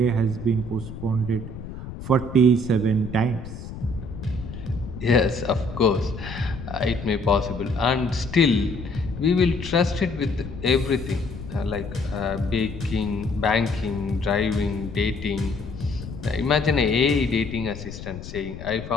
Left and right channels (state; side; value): noise; left; rumble, 11 dB below the sound